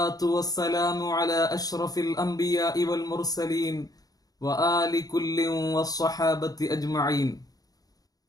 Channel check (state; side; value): late; right; 0.18 ms